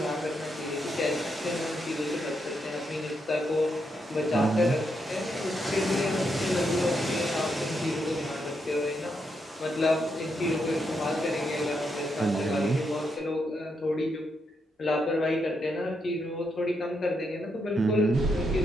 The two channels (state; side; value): normal; both; correlation 0.81